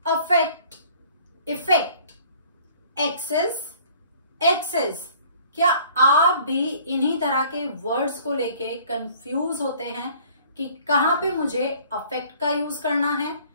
Affect, effect, access, access. क्या आप भी इन्हीं तरह के वर्ड्स को लेके कंफ्यूज होते हैं कि कहां पे मुझे अफेक्ट का यूज करना है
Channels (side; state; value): both; inverted; correlation -0.54